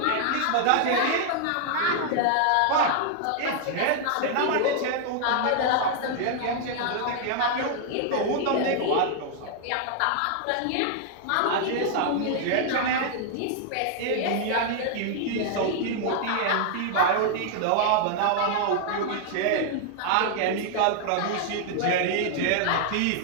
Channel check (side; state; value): both; different; correlation 0.00